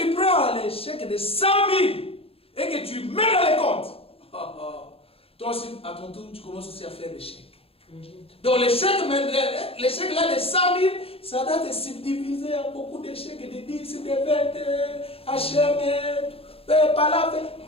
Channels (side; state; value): right; late; 0.28 ms